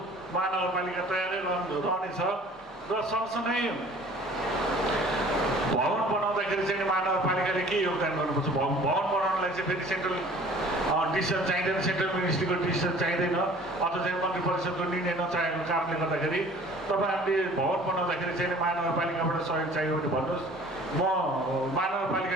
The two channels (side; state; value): both; normal; correlation 0.49